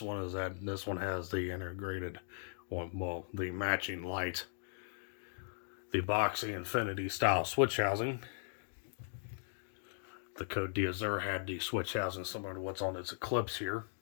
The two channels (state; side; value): silent; right; digital silence